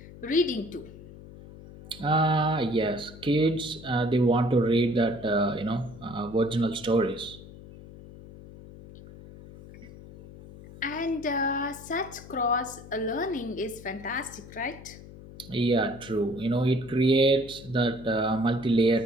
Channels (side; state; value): left; noise; hum, 17 dB below the sound